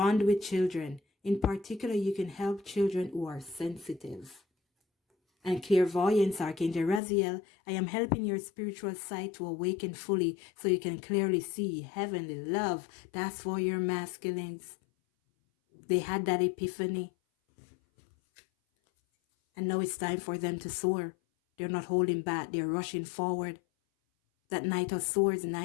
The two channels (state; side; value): drops out; right; at 7.0 s